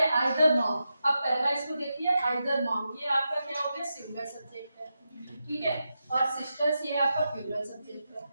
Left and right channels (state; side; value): inverted; both; correlation -0.88